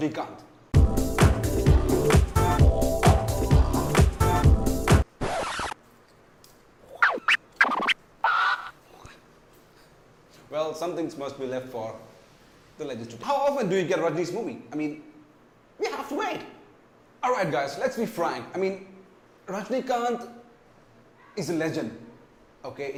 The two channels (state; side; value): identical; both; correlation 1.00